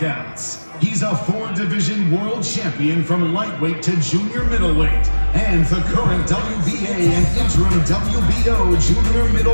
He's a 4-division world champion from lightweight to junior middleweight, and the current WBA and interim WBO junior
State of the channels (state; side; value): inverted; both; correlation -1.00